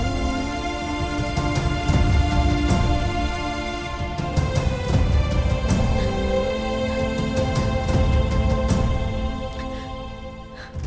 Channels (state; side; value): identical; both; correlation 1.00